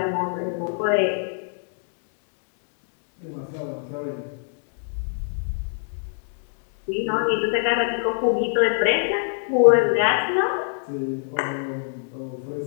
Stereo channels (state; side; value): silent; right; digital silence